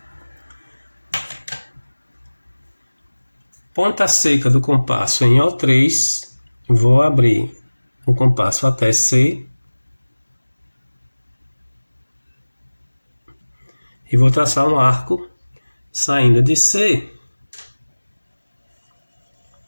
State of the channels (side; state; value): both; inverted; correlation -1.00